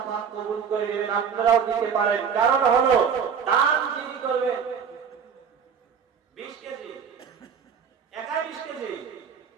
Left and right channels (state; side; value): quieter; left; 6.9 dB